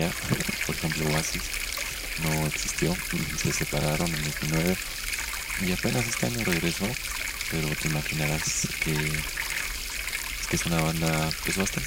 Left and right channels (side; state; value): both; identical; correlation 1.00